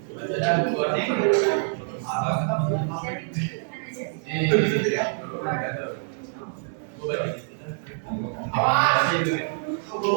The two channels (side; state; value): left; silent; digital silence